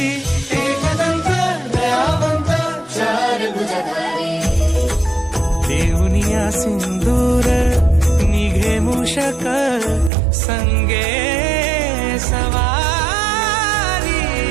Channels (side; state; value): left; drops out; at 10.1 s